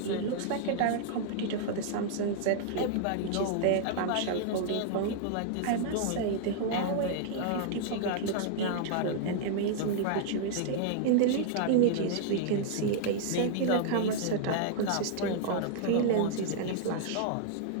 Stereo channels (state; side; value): different; both; correlation -0.01